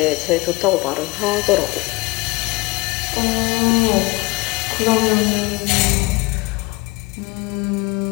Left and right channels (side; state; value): right; quieter; 23.8 dB